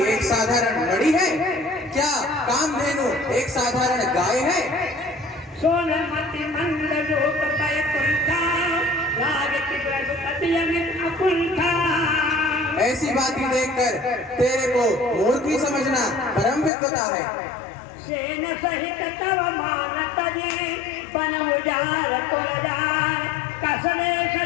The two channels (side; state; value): right; drops out; at 16.7 s